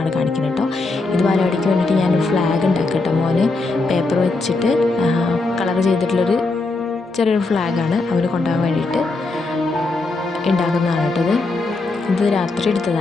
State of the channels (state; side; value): quieter; right; 3.4 dB